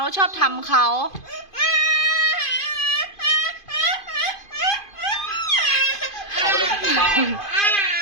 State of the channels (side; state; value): right; late; 2.5 ms